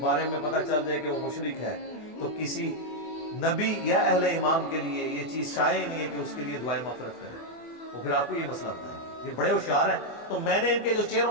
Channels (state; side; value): late; right; 24 ms